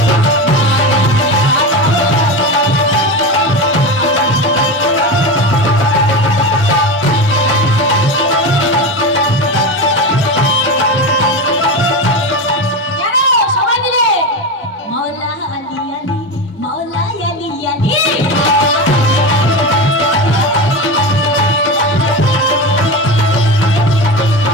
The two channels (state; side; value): normal; both; correlation 0.21